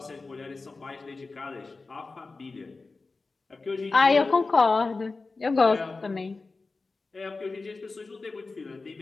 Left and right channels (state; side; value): quieter; right; 3.8 dB